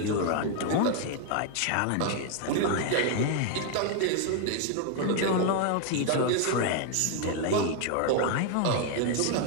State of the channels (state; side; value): different; both; correlation 0.01